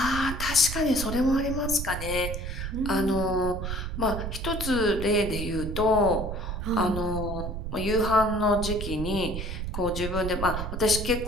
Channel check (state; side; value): noise; right; rumble, 5 dB below the sound